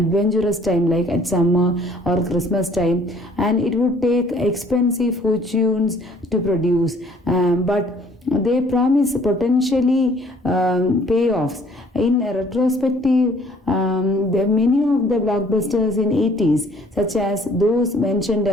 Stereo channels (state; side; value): normal; both; correlation 0.58